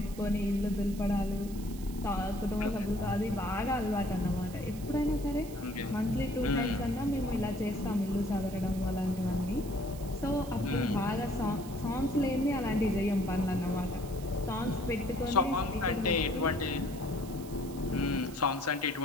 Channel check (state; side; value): noise; right; hiss, 17 dB below the sound